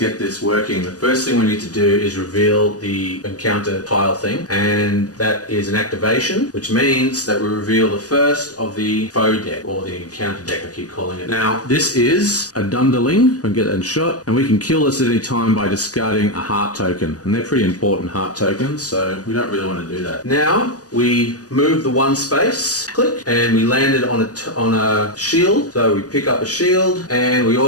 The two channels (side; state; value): right; late; 0.68 ms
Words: this working. The first thing we need to do is reveal the encounter tile thing, and that is an activation, which means that we reveal the first of the foe deck, or the encounter deck I keep calling it. Now, this is a Dunderling. We can get that in shot, and we can kill this at any time by discarding a heart token, and they're pretty important heart tokens, so we don't really want to do that. Now, we move the 1 space, click, and we landed on a shield, so we pick up a shield, and we